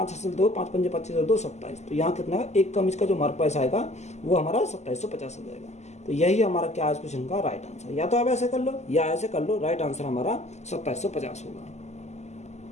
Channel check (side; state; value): right; late; 0.33 ms